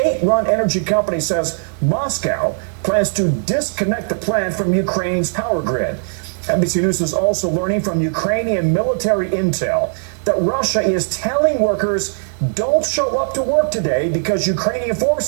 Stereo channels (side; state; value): left; silent; digital silence